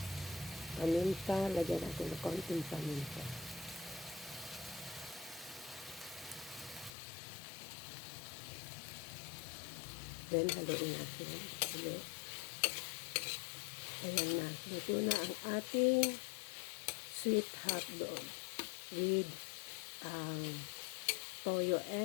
Paminta, lagyan natin ng konting paminta. Then, haluin natin ulit. Ayan na. Luto na ang ating sweet hotdog with toyo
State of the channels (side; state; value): right; drops out; at 6.9 s